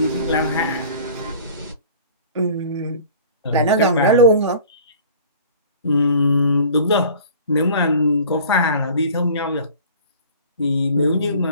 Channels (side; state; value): both; inverted; correlation -0.46